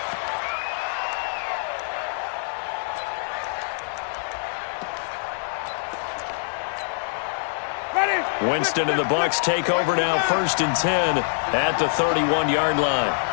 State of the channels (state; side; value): silent; right; digital silence